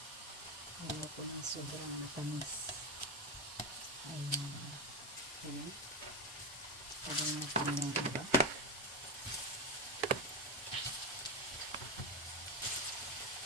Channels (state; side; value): normal; both; correlation 0.13